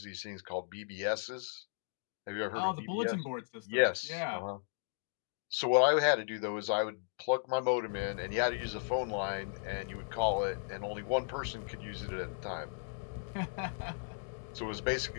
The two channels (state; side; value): silent; right; digital silence